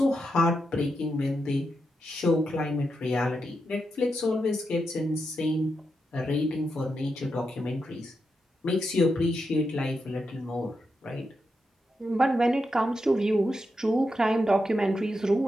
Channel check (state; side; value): normal; both; correlation 0.86